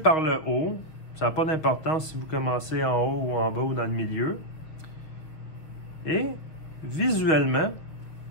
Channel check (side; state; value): right; late; 6.6 ms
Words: le haut. Ça n'a pas d'importance si vous commencez en haut ou en bas ou dans le milieu. Et visuellement,